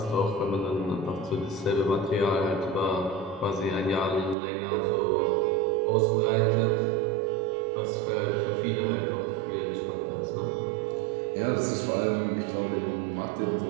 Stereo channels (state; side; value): drops out; left; at 4.4 s